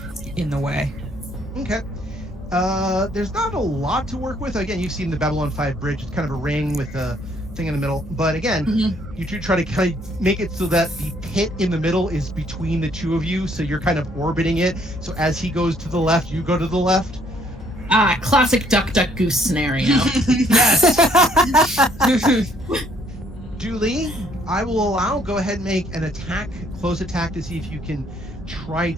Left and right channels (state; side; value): normal; both; correlation 0.65